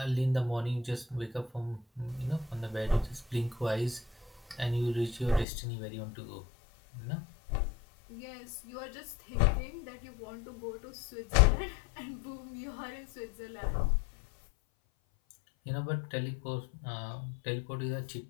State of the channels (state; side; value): drops out; right; at 5.5 s